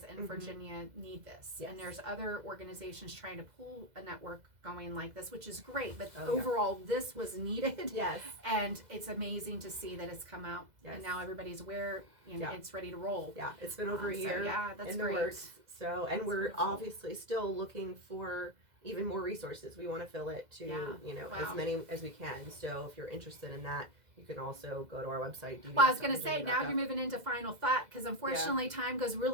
in Virginia need this. And there's other organizations trying to pull a network going like this, which is great. But overall, this was needed. Yes. And it's amazing to see that it's come out. And now everybody's aware and it's ready to roll. Yeah, it's been over a year that's in the great. works. So, and That's we're wonderful. obviously still looking for even more resources. We want to fill it to, as many as we can. So if you're interested in that, you can also go to our website. Well, I was going to say, now you're moving into final thought, because unfortunately time goes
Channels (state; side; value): late; left; 2.0 ms